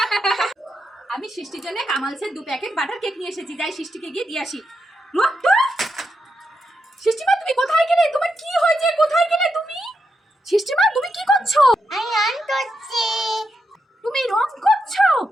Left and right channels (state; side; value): normal; both; correlation 0.84